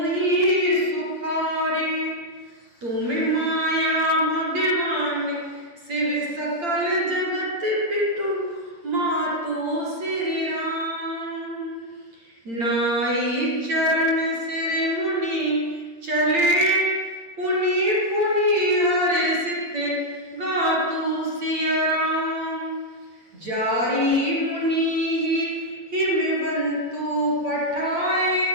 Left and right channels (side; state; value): left; late; 8.7 ms